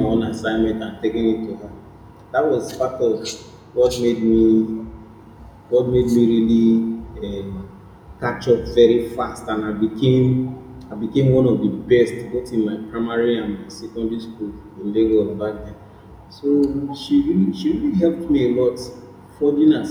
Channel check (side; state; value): both; identical; correlation 1.00